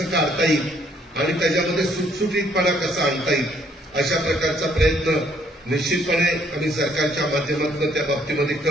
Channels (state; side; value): normal; both; correlation 0.66